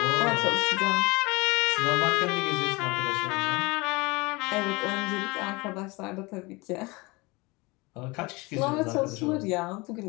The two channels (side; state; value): right; quieter; 24.8 dB